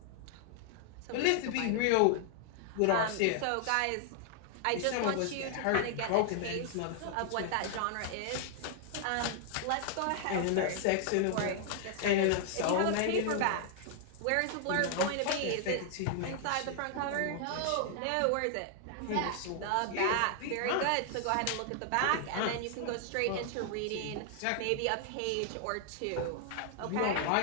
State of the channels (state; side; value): different; both; correlation 0.00